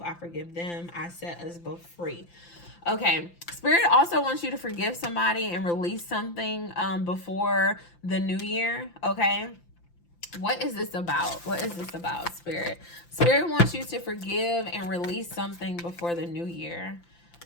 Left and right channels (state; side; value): late; right; 5.8 ms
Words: I forgive them. I set us both free. Okay, Spirit also wants you to forgive somebody and release something before the new year. Okay, what is this about? What is this about, Spirit? Spirit wants you to forgive and release something before the new year.